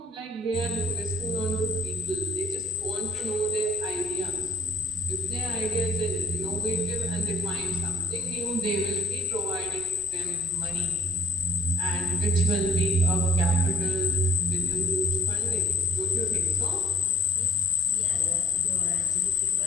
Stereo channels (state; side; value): normal; both; correlation 0.58